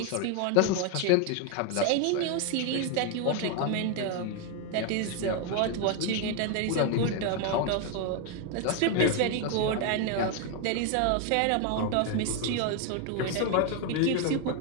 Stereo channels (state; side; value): different; both; correlation 0.01